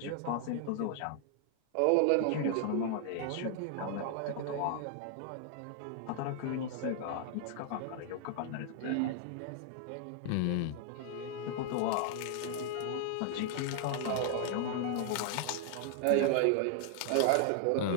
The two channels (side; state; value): both; different; correlation 0.00